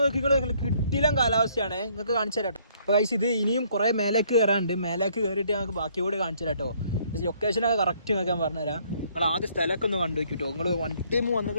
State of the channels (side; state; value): both; inverted; correlation -0.64